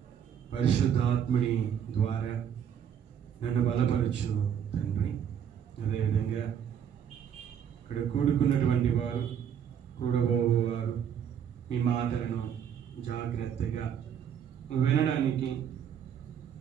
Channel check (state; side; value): quieter; left; 8.6 dB